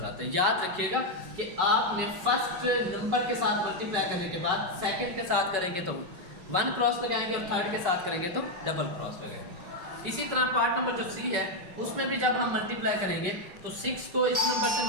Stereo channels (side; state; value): left; late; 5.4 ms